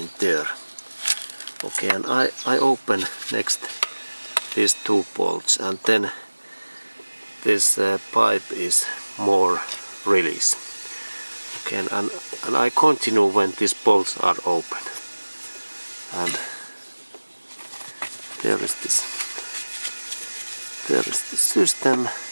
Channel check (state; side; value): inverted; both; correlation -1.00